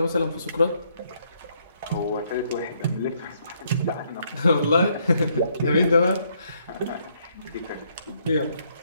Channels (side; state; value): both; inverted; correlation -0.71